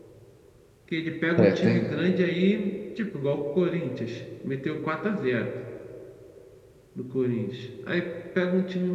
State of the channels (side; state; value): both; identical; correlation 1.00